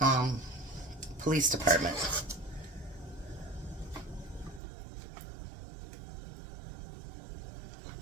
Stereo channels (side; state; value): left; drops out; at 4.6 s